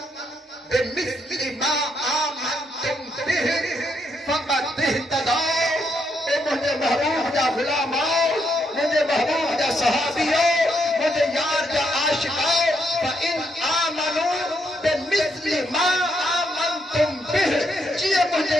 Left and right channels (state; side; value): normal; both; correlation 0.77